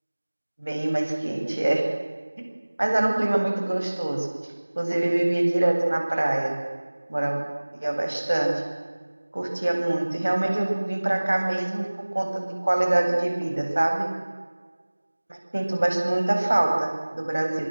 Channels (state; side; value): inverted; both; correlation -1.00